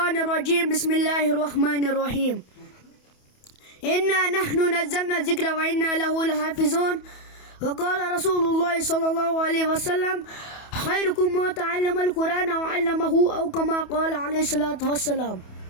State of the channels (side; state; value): right; late; 28 ms